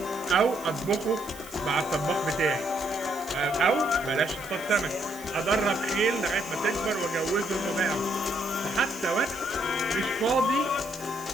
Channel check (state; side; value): noise; right; hiss, 18 dB below the sound